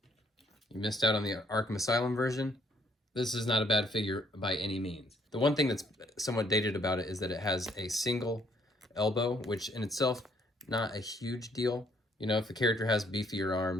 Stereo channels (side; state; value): both; normal; correlation 0.67